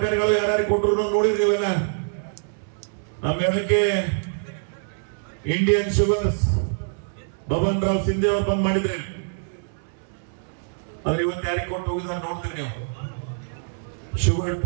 ಯಾರ್ಯಾರಿಗೆ ಕೊಟ್ಟರು ನೋಡಿದ್ದೀವಲ್ಲ. ನಮ್ಮ ಹೇಳಕ್ಕೆ ಇಂಡಿಯನ್ ಶುಗರ್ಸ್ ಬಬನ್ ರಾವ್ ಸಿಂಧೆ ಅವ್ರು ಬಂದ್ ಮಾಡಿದ್ರೆ, ಆದ್ರೆ ಇವತ್ತು ಯಾರಿಗೆ ಕೊಟ್ಟು ಹೋಗಿದ್ರೆ ನೋಡ್ತೀರಿ ನೀವು. ಶುಗರ್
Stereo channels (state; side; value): silent; left; 62 dB below the other